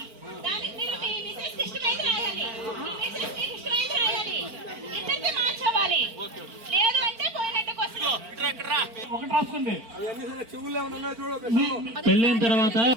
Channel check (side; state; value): left; late; 4.4 ms